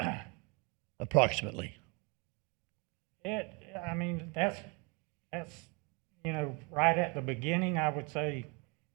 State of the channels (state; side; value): quieter; left; 29.9 dB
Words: Approximately. I mean, that's, right at the beginning, I would say